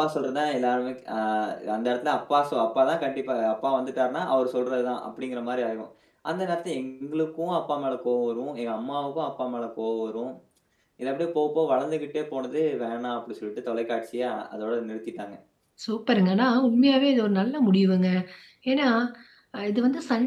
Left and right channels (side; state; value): both; identical; correlation 1.00